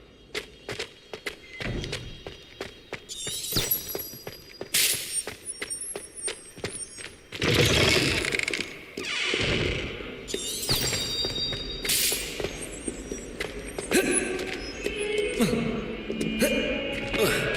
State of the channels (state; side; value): identical; both; correlation 1.00